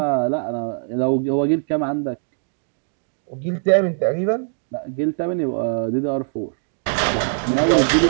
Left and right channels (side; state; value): left; silent; digital silence